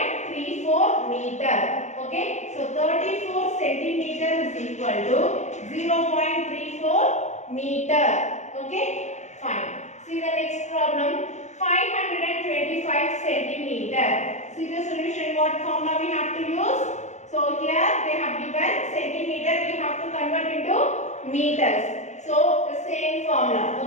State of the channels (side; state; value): right; late; 0.34 ms